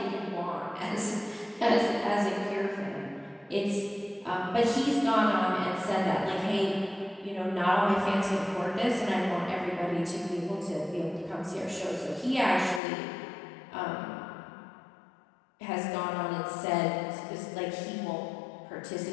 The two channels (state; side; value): drops out; right; at 12.8 s